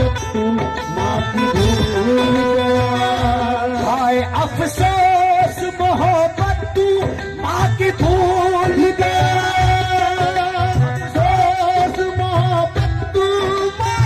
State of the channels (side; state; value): both; identical; correlation 1.00